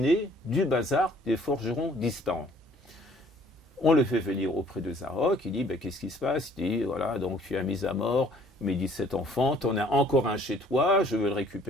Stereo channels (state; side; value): normal; both; correlation 0.58